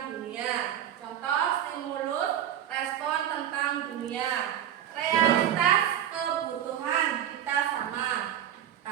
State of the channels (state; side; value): quieter; left; 10.7 dB